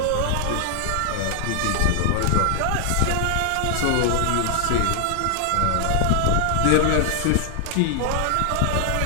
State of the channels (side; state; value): both; different; correlation 0.00